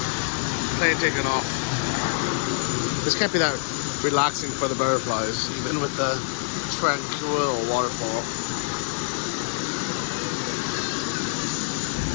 Plane taking off. This can't be that relaxing for the butterflies, even with the tranquil waterfall.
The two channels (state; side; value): silent; right; digital silence